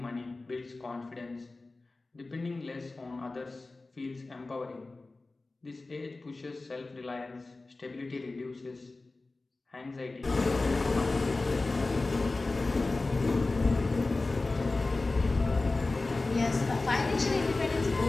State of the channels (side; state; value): right; quieter; 3.3 dB